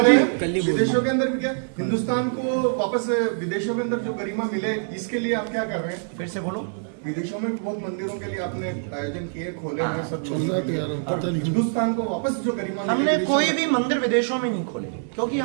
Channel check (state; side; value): silent; left; 62 dB below the other